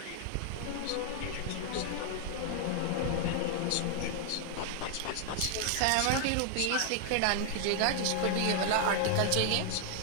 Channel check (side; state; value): both; different; correlation 0.00